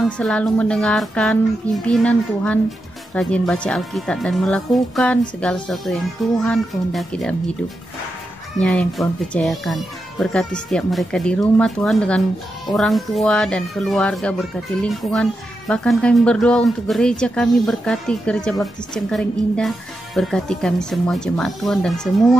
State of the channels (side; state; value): both; normal; correlation 0.88